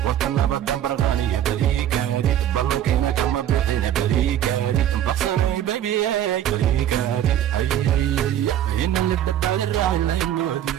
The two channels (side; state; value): left; quieter; 11.1 dB